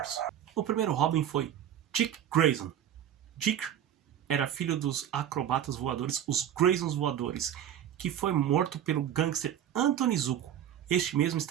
O primeiro Robin foi Dick Grayson. Dick era filho dos acrobatas voadores, os Graysons voadores, que foi morto pelo gangster Anthony Zuko. Este mesmo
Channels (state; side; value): quieter; left; 10.3 dB